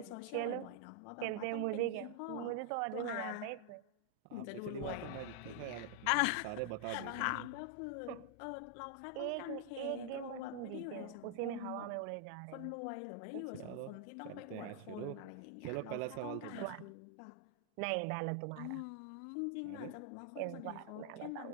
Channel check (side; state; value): both; different; correlation 0.00